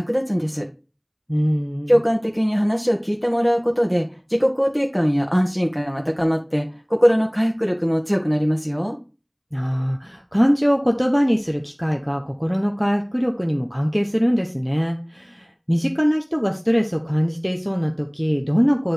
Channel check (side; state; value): both; identical; correlation 1.00